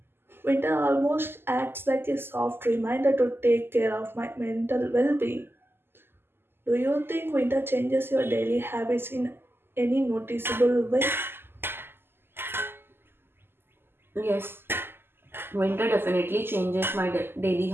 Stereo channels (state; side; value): late; left; 0.11 ms